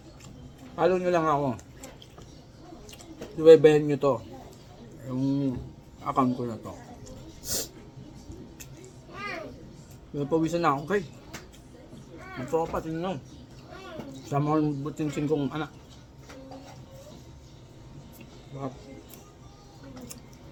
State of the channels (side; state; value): both; identical; correlation 1.00